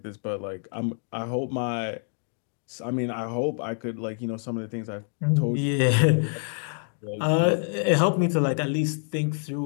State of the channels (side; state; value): right; silent; 60 dB below the other